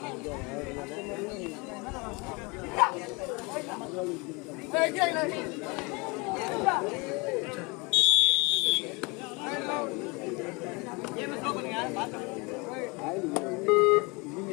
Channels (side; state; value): right; quieter; 28.0 dB